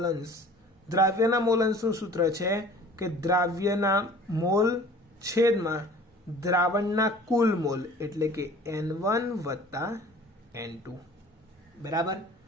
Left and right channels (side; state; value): both; normal; correlation 0.47